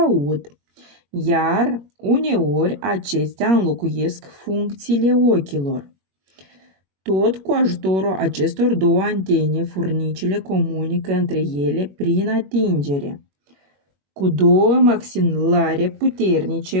iar uneori acestea înlocuiesc funcțiile ochilor. Tot cu ajutorul acestor 2 antene, furnicile comunică între ele prin atingere. Cu 2 maxilare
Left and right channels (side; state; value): left; late; 21 ms